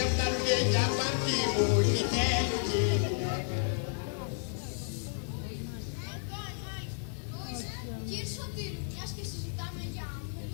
φτάνουνε για παρτί μου, γητέλου κι γυναίκα. Κύριε Σωτήρου, μιας και συζητάμε για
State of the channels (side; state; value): right; silent; digital silence